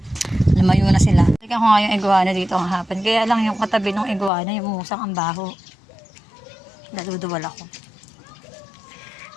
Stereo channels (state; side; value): drops out; right; at 4.3 s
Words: lumayo na sila. Tignan ko nga yung iguana dito ang hapon. Kaya lang yung katabi ng iguana, yung musang ang baho. Daluduwal ako.